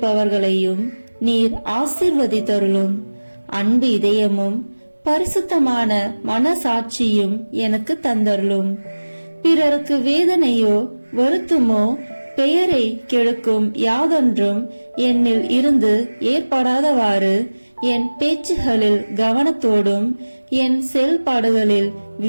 நீர் ஆசீர்வதித்தருளும். அன்பு இதயமும் பரிசுத்தமான மனசாட்சியும் எனக்கு தந்தருளும். பிறருக்கு வேதனையோ வருத்தமோ பெயரை கெடுக்கும் யாதொன்றும் என்னில் இருந்து ஏற்படாதவாறு என் பேச்சுகளில் கவனத்தோடும் என் செயல்பாடுகளில்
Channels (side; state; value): both; inverted; correlation -1.00